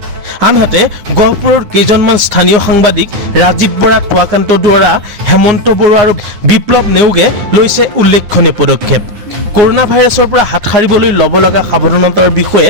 আনহাতে গহপুৰৰ কেইজনমান স্থানীয় সাংবাদিক ৰাজীৱ বৰা, টুৱাকান্ত দুৱৰা, হেমন্ত বৰুৱা আৰু বিপ্লৱ নেওগে লৈছে উল্লেখনীয় পদক্ষেপ। কৰোনা ভাইৰাছৰ পৰা হাত সাৰিবলৈ ল'ব লগা সাৱধানতাৰ বিষয়ে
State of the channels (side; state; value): left; late; 9.9 ms